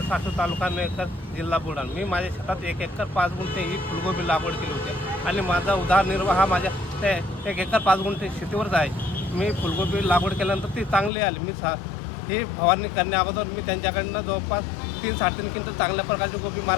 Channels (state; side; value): drops out; right; at 11.1 s